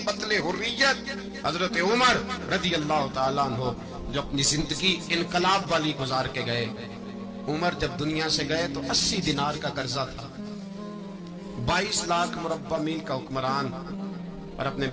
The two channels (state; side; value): identical; both; correlation 1.00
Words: پتلے حریت حضرت عمر رضی اللہ تعالیٰ عنہ جو اپنی زندگی انقلاب والی گزار کے گئے۔ عمر جب دنیا سے گئے تو 80 دینار کا قرضہ تھا، 22 لاکھ مربع میل کا حکمران، اور اپنے